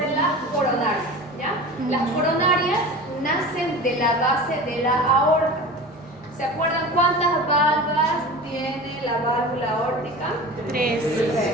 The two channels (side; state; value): both; normal; correlation 0.34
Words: las coronarias. ¿Ya? Las coronarias nacen de la base de la aorta. ¿Se acuerdan cuántas válvulas tiene la válvula aórtica? 3.